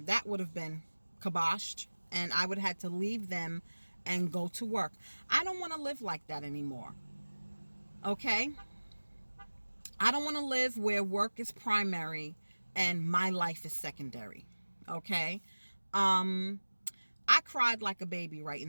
would have been kiboshed, and I would have had to leave them and go to work. I don't want to live like that anymore. Okay? I don't want to live where work is primary and my life is secondary. Okay? I cried like a baby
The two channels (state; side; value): inverted; both; correlation -1.00